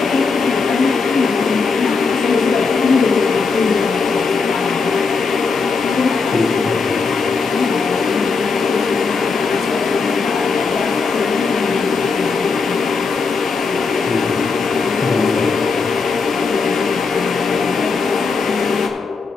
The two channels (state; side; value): quieter; right; 4.8 dB